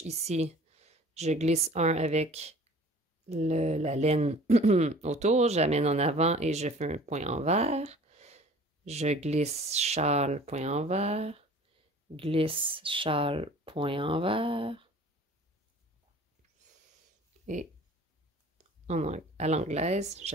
ici, je glisse un avec la laine autour. J'amène en avant et je fais un point en vert. je glisse châle, point envers, glisse châle, point envers, et à l'anglaise,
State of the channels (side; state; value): both; normal; correlation 0.47